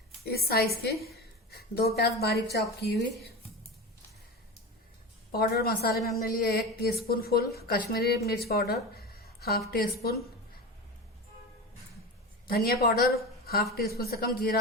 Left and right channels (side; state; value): both; normal; correlation 0.26